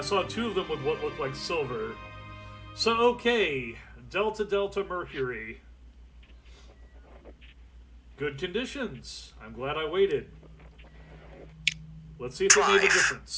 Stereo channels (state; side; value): identical; both; correlation 1.00